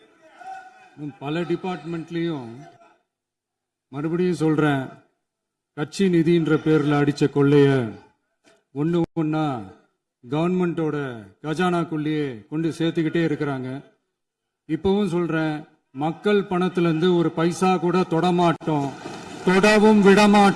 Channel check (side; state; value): both; identical; correlation 1.00